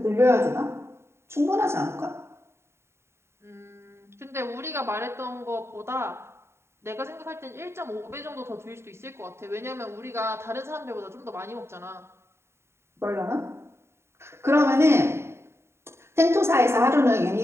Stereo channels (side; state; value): left; late; 0.13 ms